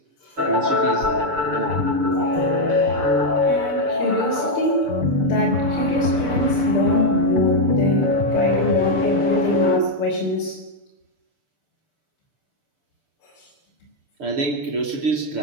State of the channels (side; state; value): left; late; 6.8 ms